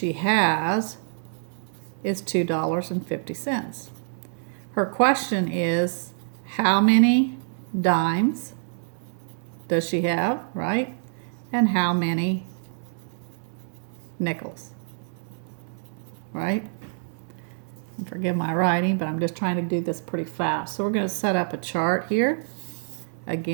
has is $2.50. Her question is, how many dimes does she have, right? And how many nickels, right? And forgive my writing, but I'm just trying to do this pretty fast. So we're going to set up a chart here.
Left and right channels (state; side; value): silent; left; digital silence